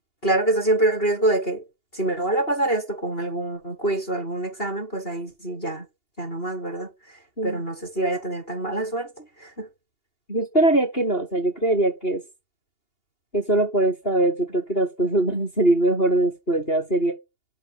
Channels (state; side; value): late; right; 2.8 ms